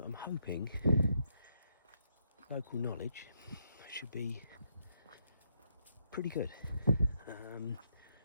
hoping local knowledge should be pretty good.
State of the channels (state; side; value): inverted; both; correlation -0.77